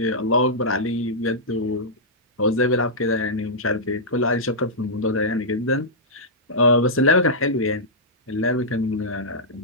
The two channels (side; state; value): both; normal; correlation -0.11